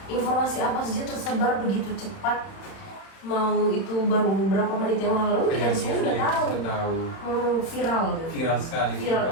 informasi apa saja tersebar begitu cepat. Mau itu baru beberapa menit yang lalu kita semua sudah tahu. Viral. Viral sekali. Viral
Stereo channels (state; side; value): late; right; 31 ms